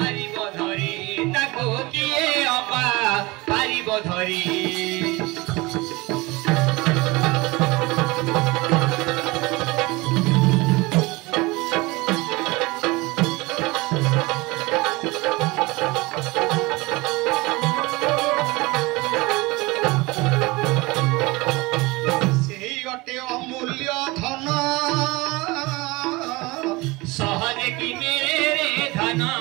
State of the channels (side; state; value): left; quieter; 23.1 dB